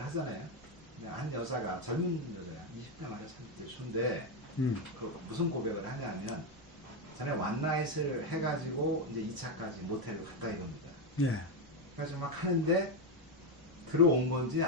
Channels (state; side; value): normal; both; correlation 0.07